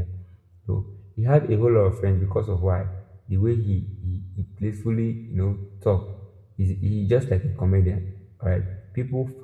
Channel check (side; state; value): both; identical; correlation 1.00